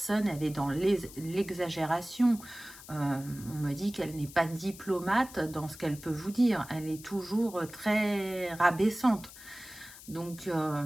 elle est dans l'exagération. On me dit qu'elle n'est pas diplomate dans ce qu'elle peut vous dire. Elle est toujours très rabaissante. Donc,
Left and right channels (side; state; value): left; noise; hiss, 17 dB below the sound